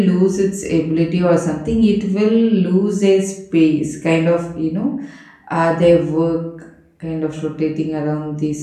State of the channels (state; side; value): identical; both; correlation 1.00